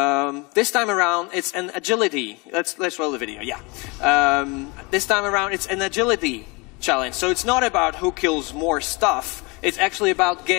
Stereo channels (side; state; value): right; quieter; 27.4 dB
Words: time around it's an agility. Let's roll the video, yeah. This time around it's an agility challenge. So it's not about who kills more stuff. It's actually about